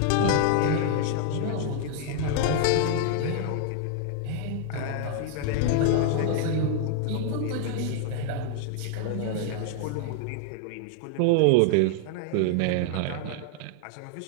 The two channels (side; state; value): both; different; correlation -0.01